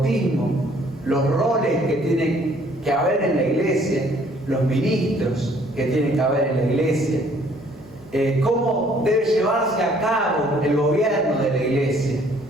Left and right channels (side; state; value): left; noise; rumble, 28 dB below the sound